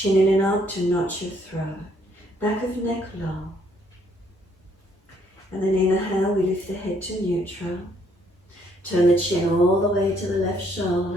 in and up to notch your throat. Back of neck low. And then inhale, we lift the head to neutral. Turn the chin all the way to the left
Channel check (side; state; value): both; normal; correlation 0.68